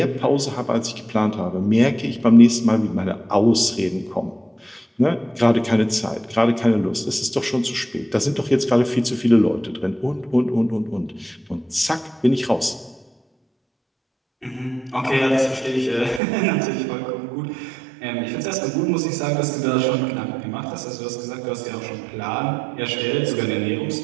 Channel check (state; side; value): drops out; left; at 16.2 s